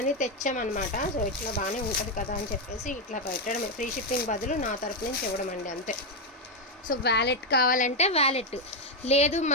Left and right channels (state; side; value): normal; both; correlation 0.05